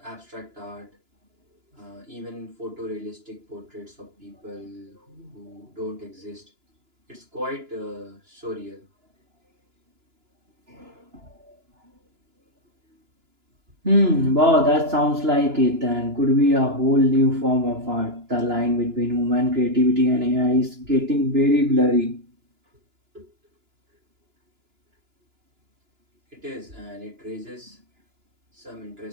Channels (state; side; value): late; left; 2.9 ms